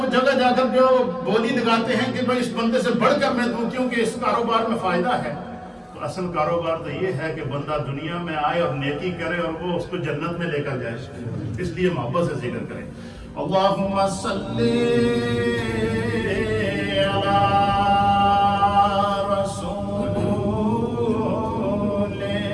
جگہ جا کر جو ہے وہ بولی لگاتے ہیں کہ بھائی اس بندے سے بڑھ کر میں دوں کیونکہ اس کاروبار میں فائدہ ہے. تو اصل کاروبار تو یہ ہے کہ بندہ دنیا میں آئے اور نیکی کرے اور وہ اس کو جنت میں لے کر جائے. اس لیے محبت سے ذکر کریں. اللہم صلی علی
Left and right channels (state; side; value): identical; both; correlation 1.00